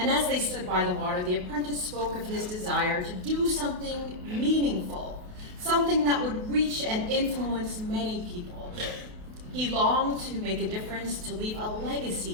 as they stood by the water, the apprentice spoke of his desire to do something meaningful, something that would reach and influence many people. He longed to make a difference, to leave a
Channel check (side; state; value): left; late; 28 ms